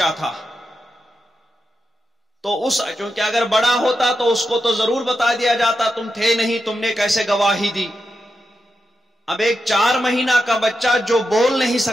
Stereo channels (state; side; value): normal; both; correlation 0.87